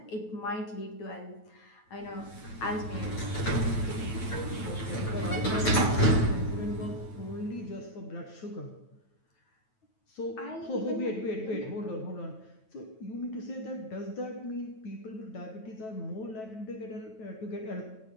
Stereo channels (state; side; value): late; right; 9.2 ms